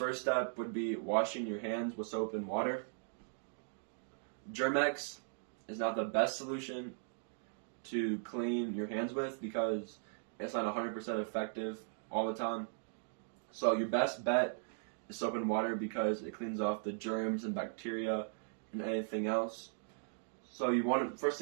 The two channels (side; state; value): left; silent; digital silence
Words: step would be washing your hands with soap and water. Germ-X is not the best solution to clean your hands with because it's not 100% effective all the time. So your best bet is soap and water because it cleans off the germs and bacteria and anything else. So first